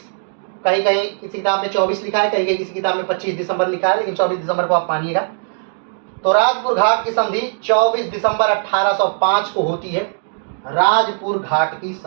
कहीं कहीं किसी किताब में 24 लिखा है, कहीं कहीं किसी किताब में 25 दिसंबर लिखा है, लेकिन 24 दिसंबर को आप मानिएगा। तो राजपुर घाट की संधि 24 दिसंबर 1805 को होती है। राजपुर घाट की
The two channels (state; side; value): silent; left; digital silence